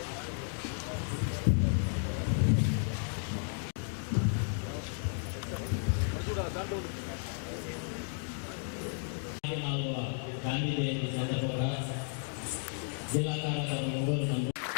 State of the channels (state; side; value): silent; right; 55 dB below the other